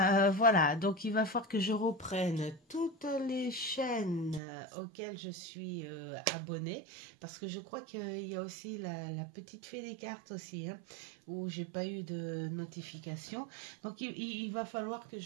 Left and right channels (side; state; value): left; drops out; at 4.4 s